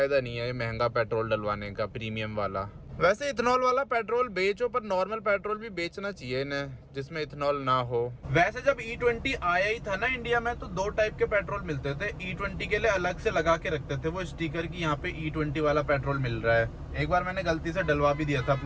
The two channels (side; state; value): both; identical; correlation 1.00